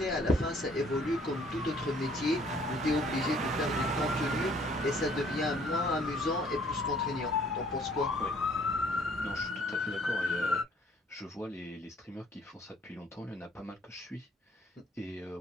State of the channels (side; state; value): both; normal; correlation 0.60